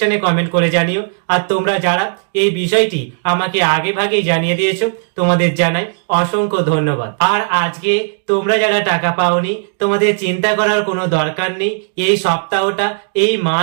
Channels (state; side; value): silent; left; digital silence